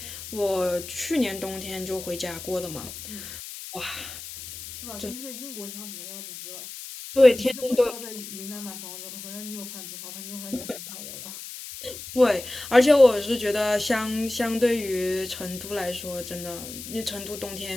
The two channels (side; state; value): left; noise; hiss, 11 dB below the sound